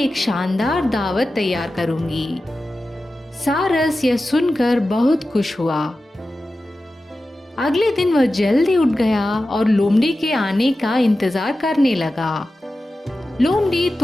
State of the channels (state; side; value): normal; both; correlation 0.94